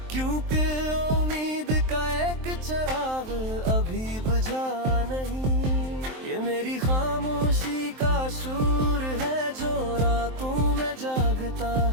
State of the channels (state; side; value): late; left; 23 ms